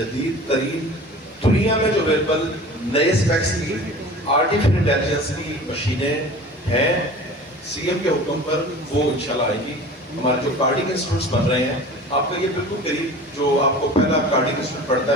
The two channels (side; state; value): both; normal; correlation 0.40